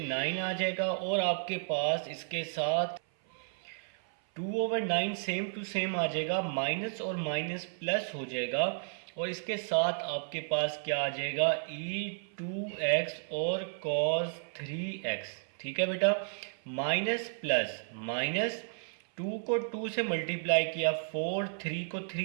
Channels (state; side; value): silent; left; 55 dB below the other